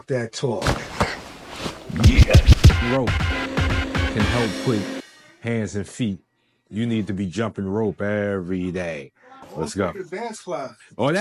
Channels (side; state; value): both; identical; correlation 1.00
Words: That Talk. Yeah. Rope can help put hands and feet. You need to be jumping rope every day. Let's go. Dance class. Oh,